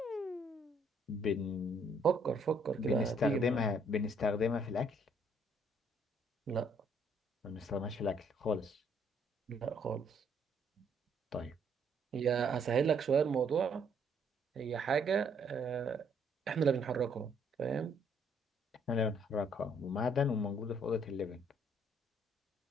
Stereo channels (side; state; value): both; normal; correlation 0.67